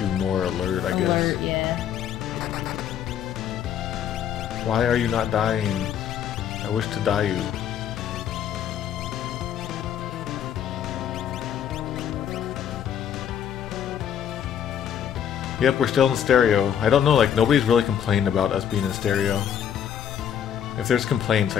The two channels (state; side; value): quieter; right; 9.1 dB